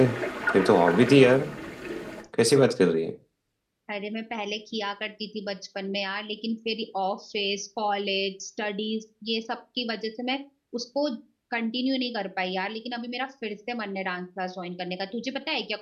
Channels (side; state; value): both; identical; correlation 1.00